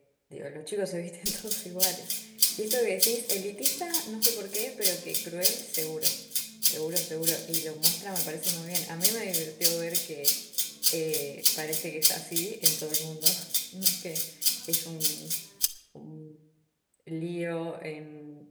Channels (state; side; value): identical; both; correlation 1.00